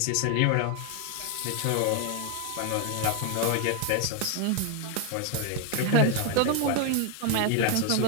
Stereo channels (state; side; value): different; both; correlation 0.01